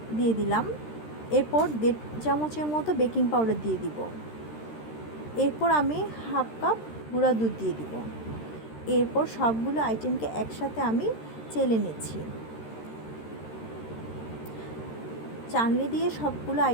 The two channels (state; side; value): late; right; 13 ms